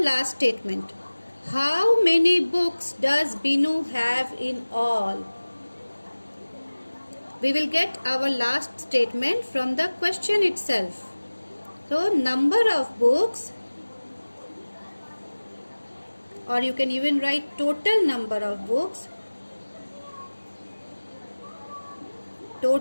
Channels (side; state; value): both; inverted; correlation -1.00